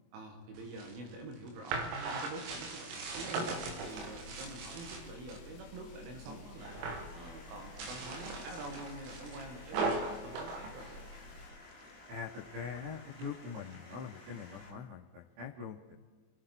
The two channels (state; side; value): late; left; 24 ms